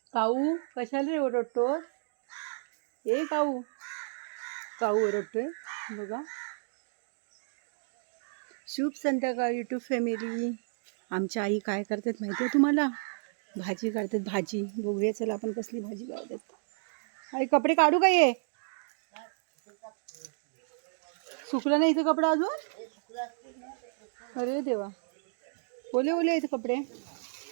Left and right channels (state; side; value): silent; left; digital silence